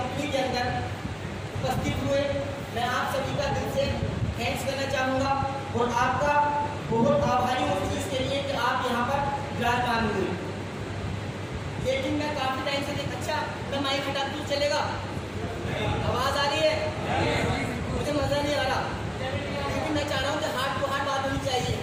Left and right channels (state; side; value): identical; both; correlation 1.00